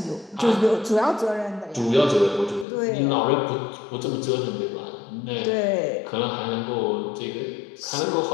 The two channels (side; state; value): right; drops out; at 2.7 s